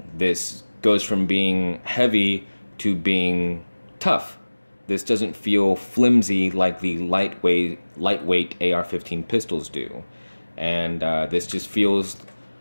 This goes from being heavy to being tough. This doesn't feel flimsy like the lightweight AR-15 pistols do. And this just feels,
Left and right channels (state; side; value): inverted; both; correlation -1.00